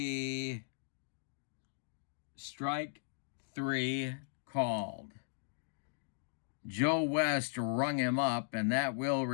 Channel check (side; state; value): right; silent; digital silence